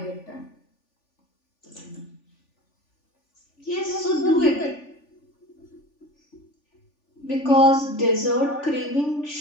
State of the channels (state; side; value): late; right; 3.4 ms